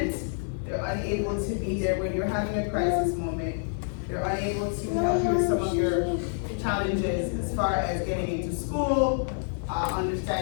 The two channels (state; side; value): silent; right; digital silence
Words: They're unable to be there when you're having a crisis moment. They're unable to help you with some of your challenges as far as getting into school,